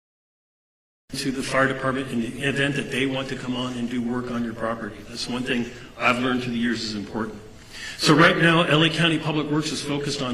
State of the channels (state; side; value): identical; both; correlation 1.00